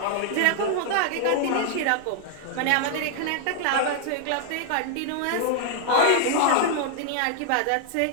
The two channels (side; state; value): both; different; correlation -0.01